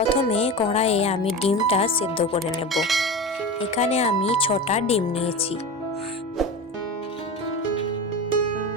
কড়াইয়ে আমি ডিমটা সেদ্ধ করে নেব। এখানে আমি 6টা ডিম নিয়েছি।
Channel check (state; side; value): normal; both; correlation 0.27